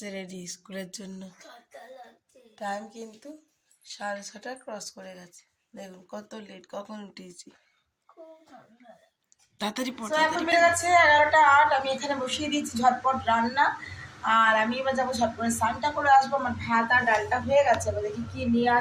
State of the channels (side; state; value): both; identical; correlation 1.00